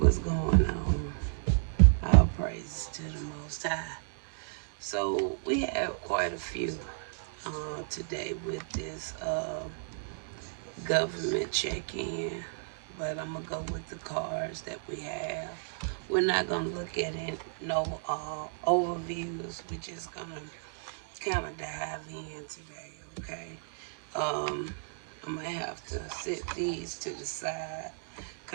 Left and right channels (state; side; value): silent; left; digital silence